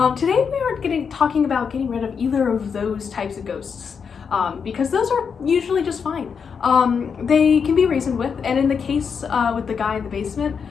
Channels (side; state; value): right; quieter; 6.3 dB